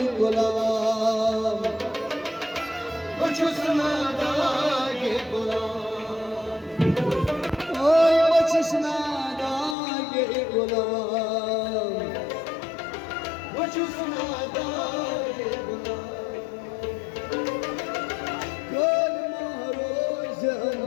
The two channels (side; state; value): right; drops out; at 9.8 s